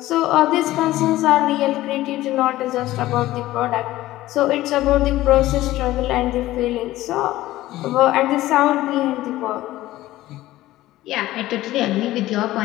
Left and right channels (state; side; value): quieter; right; 16.1 dB